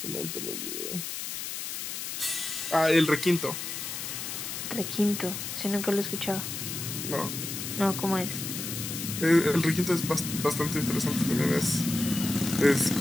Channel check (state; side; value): noise; left; hiss, 5 dB below the sound